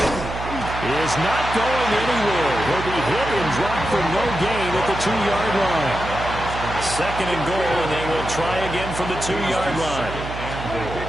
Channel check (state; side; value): noise; right; hum, 8 dB below the sound